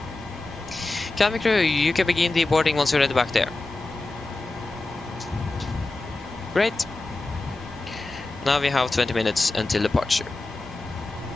Cabin crew, you can begin the boarding once you're ready back there. Great. Now we have 20 minutes until departure.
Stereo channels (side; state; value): right; quieter; 3.1 dB